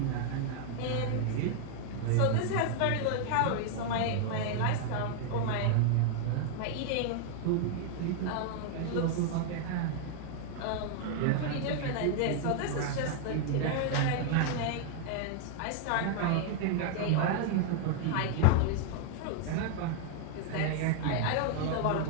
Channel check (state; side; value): different; both; correlation 0.00